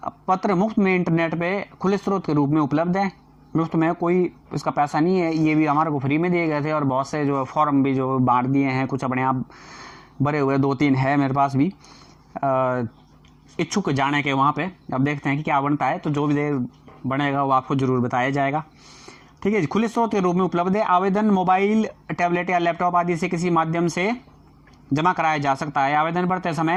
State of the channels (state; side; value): identical; both; correlation 1.00